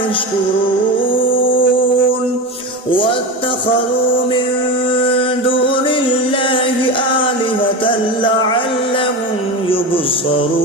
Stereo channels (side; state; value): both; normal; correlation 0.23